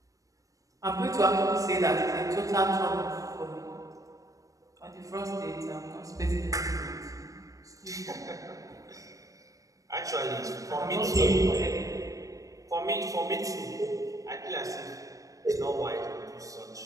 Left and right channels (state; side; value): late; left; 0.16 ms